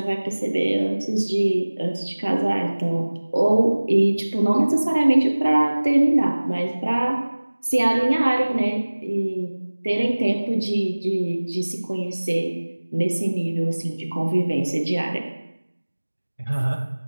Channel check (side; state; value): both; inverted; correlation -1.00